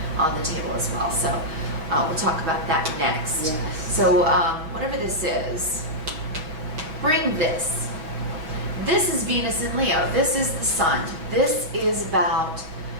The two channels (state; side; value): late; left; 6.3 ms